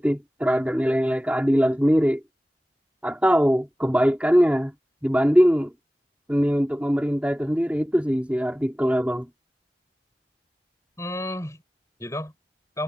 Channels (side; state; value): both; normal; correlation 0.97